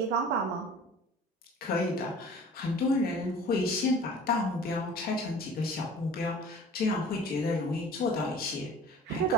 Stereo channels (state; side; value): normal; both; correlation 0.44